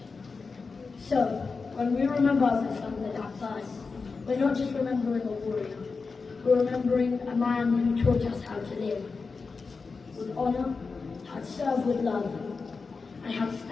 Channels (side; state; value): right; quieter; 4.6 dB